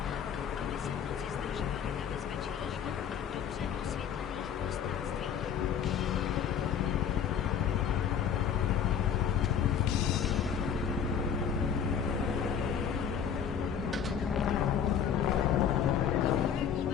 aby se v noci zdržovali na bezpečných, dobře osvětlených prostranstvích.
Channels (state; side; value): quieter; right; 7.9 dB